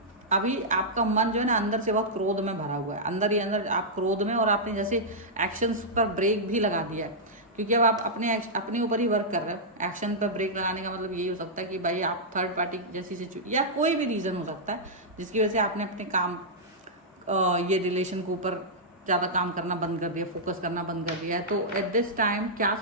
अभी आपका मन जो है ना अंदर से बहुत क्रोध में भरा हुआ है, अंदर ही अंदर आप क्रोध में, और आपने जैसे एक्शंस पर ब्रेक भी लगा दिया है क्योंकि अब आप अपने ऊपर ही वर्क कर रहे हो। एक्शन पर ब्रेक लगाने का मतलब यही हो सकता है कि भाई आप थर्ड पार्टी जैसी सिचुएशन या कोई भी रीज़न हो सकता है जिसकी वजह से आपने अपने काम ये रिलेशन के ऊपर ज़्यादा काम करना बंद कर दिया, फोकस करना बंद कर दिया है। तो एट दिस टाइम क्या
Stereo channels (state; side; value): normal; both; correlation -0.10